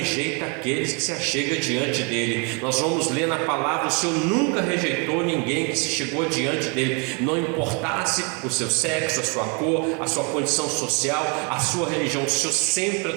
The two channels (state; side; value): quieter; left; 34.0 dB